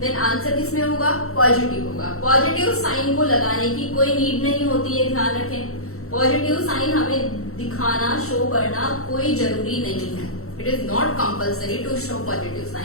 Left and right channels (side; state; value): right; late; 0.63 ms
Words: answer किसमें होगा, पॉजिटिव होगा। पॉजिटिव साइन को लगाने की कोई नीड नहीं होती है, ध्यान रखें। पॉजिटिव साइन हमें दिखाना, शो करना कोई जरूरी नहीं है। It is not compulsory to show positive